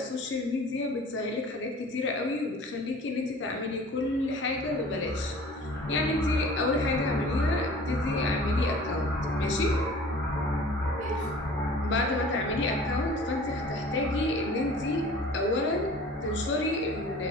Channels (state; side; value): normal; both; correlation 0.45